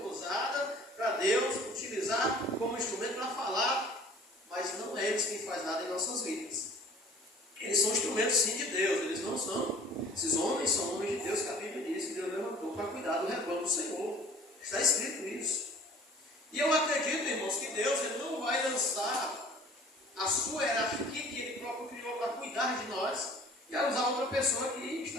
usada para Deus utilizar como instrumento para falar, mas não é eles quem faz nada em nossas vidas. Eles são instrumentos sim de Deus, eles não são. Esses homens são homens de Deus que a Bíblia diz que Deus levantou para cuidar do rebanho do Senhor. Está escrito isso. E eu acredito, irmãos, que Deus ele não vai lançar a sua hierarquia que Ele próprio criou para cuidar de nós e a usar outra pessoa que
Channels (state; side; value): normal; both; correlation 0.49